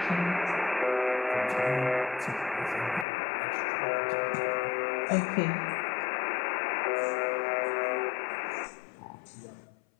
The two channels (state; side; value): drops out; right; at 3.1 s